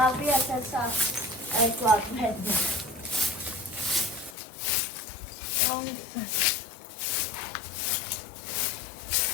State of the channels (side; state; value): right; drops out; at 4.4 s